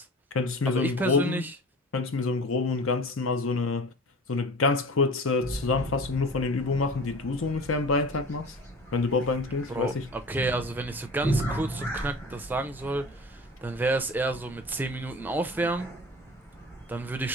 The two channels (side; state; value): both; normal; correlation 0.38